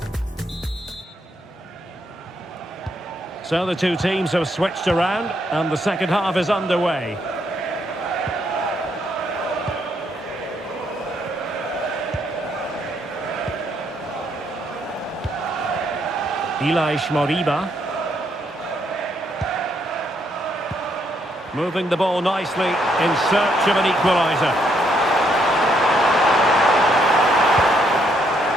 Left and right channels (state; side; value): normal; both; correlation 0.73